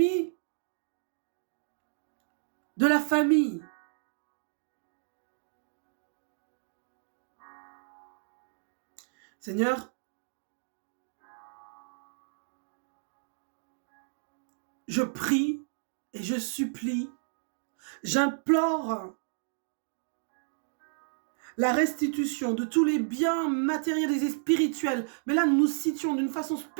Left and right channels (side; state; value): left; silent; digital silence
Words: de la famille. Seigneur, je prie et je supplie, j'implore la restitution de tous les biens matériels et spirituels. Mais là, nous nous situons d'une façon